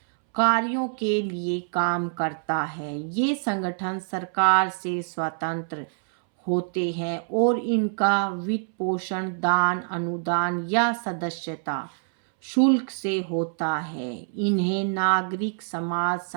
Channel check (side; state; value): left; silent; 61 dB below the other